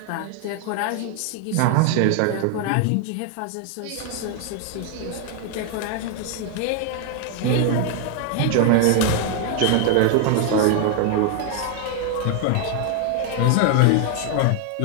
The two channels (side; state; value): both; different; correlation 0.00